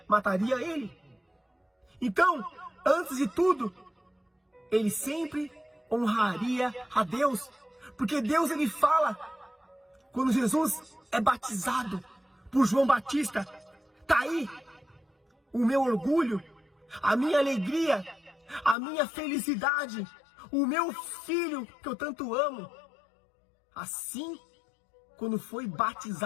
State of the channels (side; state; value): right; drops out; at 18.8 s